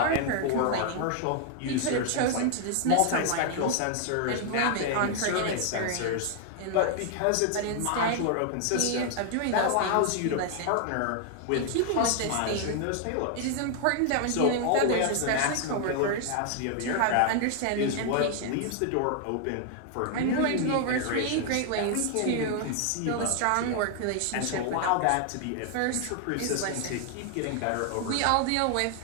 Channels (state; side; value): different; both; correlation 0.00